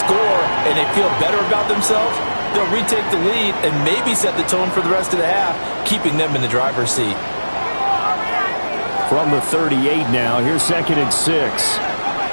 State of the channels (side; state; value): both; inverted; correlation -1.00